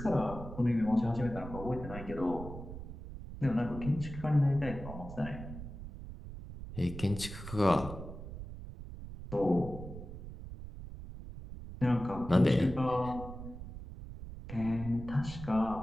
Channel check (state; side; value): noise; right; rumble, 11 dB below the sound